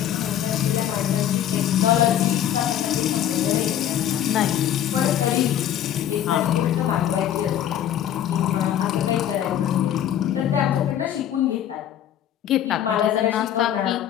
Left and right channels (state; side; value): quieter; right; 10.8 dB